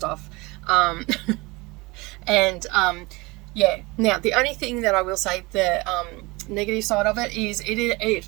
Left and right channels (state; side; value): quieter; left; 24.1 dB